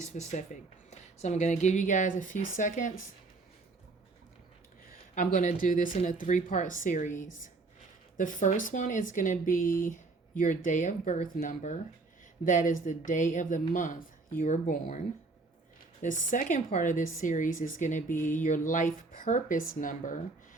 So I'm going to give you guys a few seconds. I'm going to do this in a 3-part series. The first one is going to be your day of birth number. That is the day of the month you were born. The second part of this series is going to be your life purpose number.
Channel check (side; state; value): left; quieter; 3.6 dB